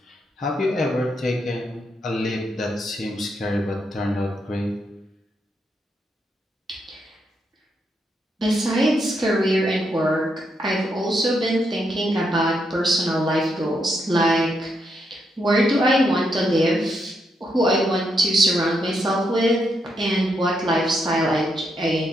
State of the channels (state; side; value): normal; both; correlation 0.80